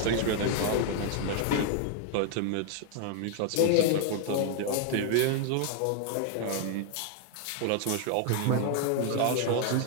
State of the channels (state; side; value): different; both; correlation 0.00